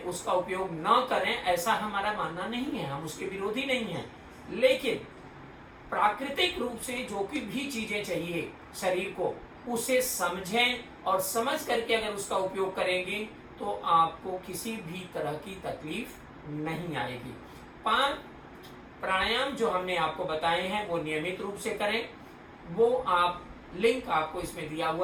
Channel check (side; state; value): both; identical; correlation 1.00